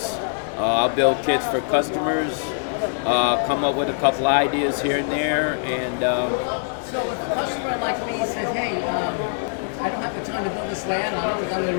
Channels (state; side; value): silent; right; digital silence